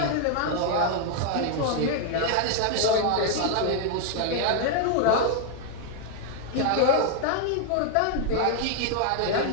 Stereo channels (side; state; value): both; different; correlation 0.00